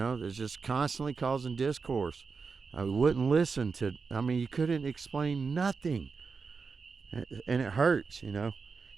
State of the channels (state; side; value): quieter; left; 5.0 dB